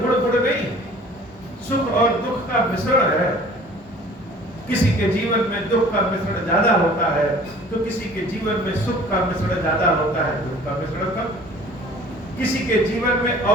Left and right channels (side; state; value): both; normal; correlation 0.49